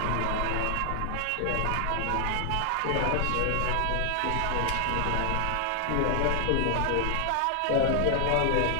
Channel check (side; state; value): both; different; correlation 0.00